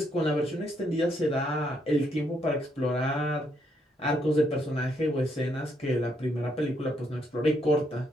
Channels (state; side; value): normal; both; correlation 0.74